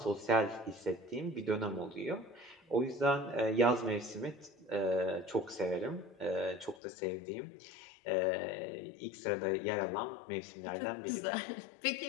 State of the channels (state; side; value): drops out; right; at 6.8 s